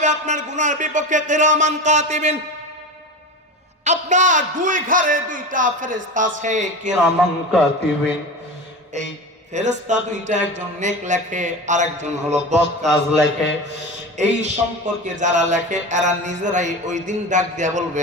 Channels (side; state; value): both; normal; correlation 0.27